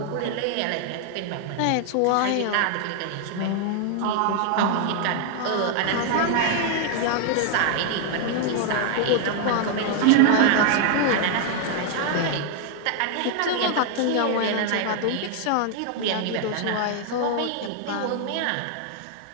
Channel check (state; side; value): different; both; correlation 0.00